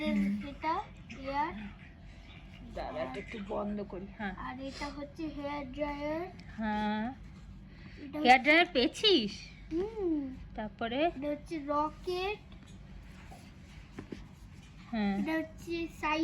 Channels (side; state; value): both; identical; correlation 1.00